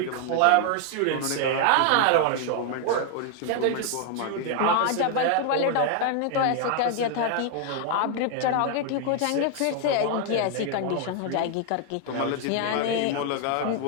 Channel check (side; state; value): both; different; correlation 0.00